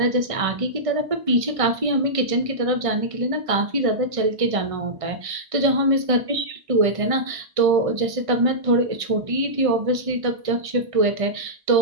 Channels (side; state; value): left; late; 1.5 ms